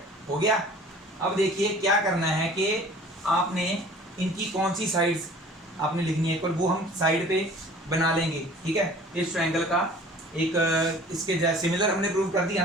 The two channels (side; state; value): both; normal; correlation 0.47